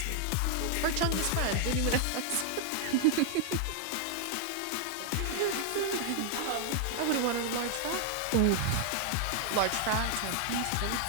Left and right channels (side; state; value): both; different; correlation 0.00